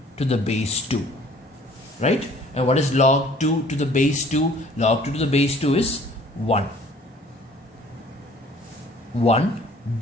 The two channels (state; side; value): normal; both; correlation 0.54